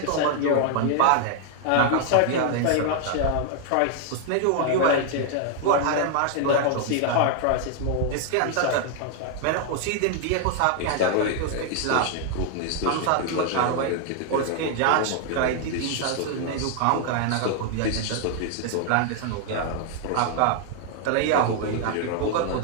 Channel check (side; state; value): both; different; correlation 0.00